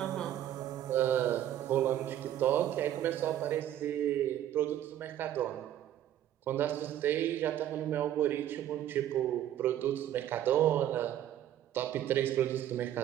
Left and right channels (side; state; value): left; quieter; 11.7 dB